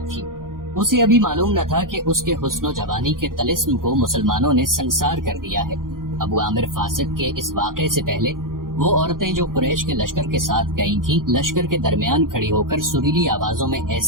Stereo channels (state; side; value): late; left; 0.91 ms